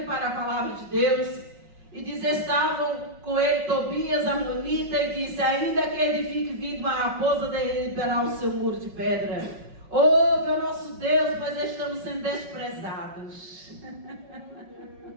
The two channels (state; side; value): late; left; 5.4 ms